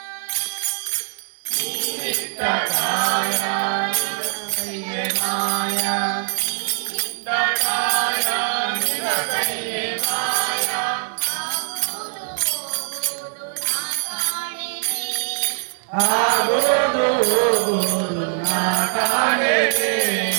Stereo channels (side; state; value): left; silent; digital silence